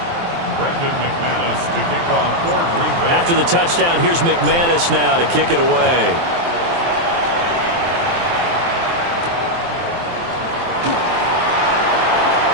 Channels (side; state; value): left; late; 23 ms